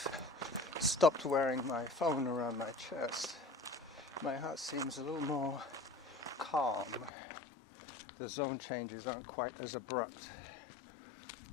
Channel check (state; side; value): drops out; right; at 7.1 s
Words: stopped wearing my phone around my chest, my heart seems a little more calm. The zone changes aren't quite as abrupt.